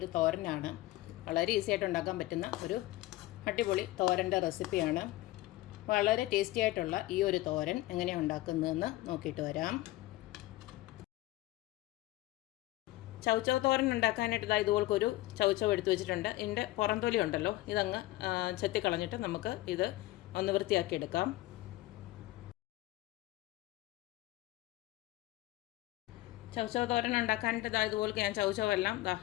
തോരനാണ്. വളരെ ഈസി ആയിട്ട് ഉണ്ടാക്കാൻ പറ്റുന്ന ഒരു അടിപൊളി തോരൻ്റെ റെസിപ്പിയാണ്. വളരെ ടേസ്റ്റി ആയിട്ടുള്ള ഈ ഒരു തോരൻ എങ്ങനെയാണ് ഉണ്ടാക്കുന്നതെന്ന് നോക്കിയിട്ട് വരാം. ചൗച്ചവ് തോരൻ ഉണ്ടാക്കാനായിട്ട് ഇതുപോലൊരു ചൗച്ചവ് എടുത്തു വെച്ചിട്ടുണ്ട്. ഇതിൻ്റെ പുറംതൊലി ഉണ്ടല്ലോ, ഇതങ്ങ് ചെത്തിക്കളഞ്ഞിട്ട് നമുക്ക് ഇത് ഒന്ന് വൃത്തിയാക്കി എടുക്കാം. ചൗച്ചവ് തോരൻ ഉണ്ടാക്കാനായിട്ട് ഇതുപോലെ ഞാൻ ചൗച്ചവെല്ലാം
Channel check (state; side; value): quieter; right; 17.5 dB